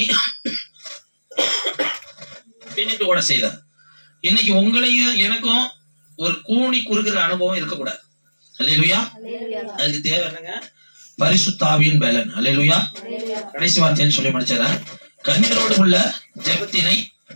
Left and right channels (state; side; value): inverted; both; correlation -1.00